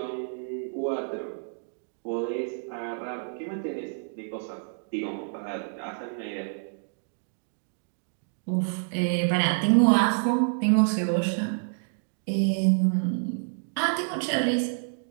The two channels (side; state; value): left; silent; digital silence